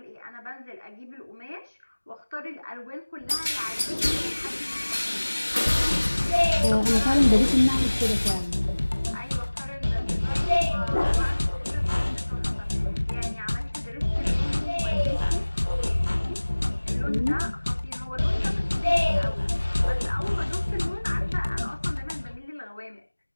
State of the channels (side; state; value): both; inverted; correlation -1.00